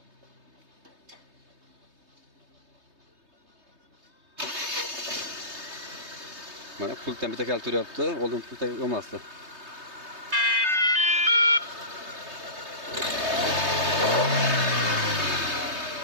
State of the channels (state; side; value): late; left; 3.2 ms